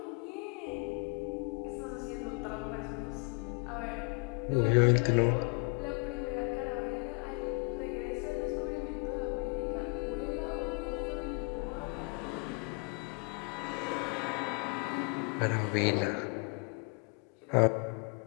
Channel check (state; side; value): quieter; right; 32.4 dB